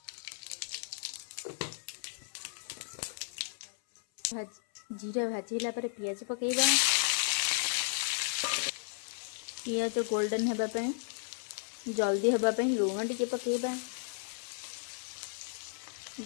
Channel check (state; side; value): silent; right; 55 dB below the other